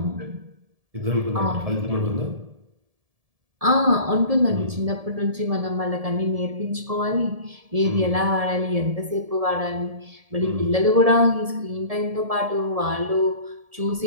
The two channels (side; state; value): left; late; 1.7 ms